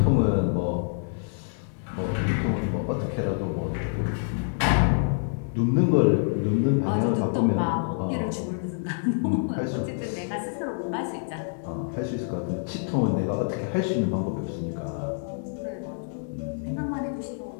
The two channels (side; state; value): right; silent; 60 dB below the other